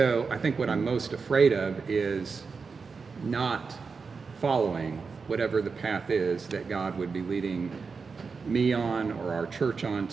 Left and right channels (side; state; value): left; quieter; 5.0 dB